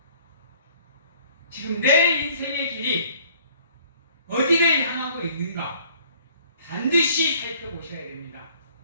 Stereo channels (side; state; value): both; inverted; correlation -0.57